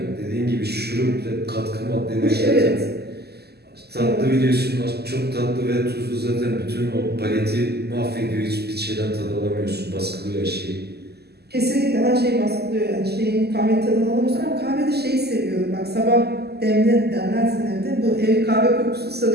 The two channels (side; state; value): left; late; 0.47 ms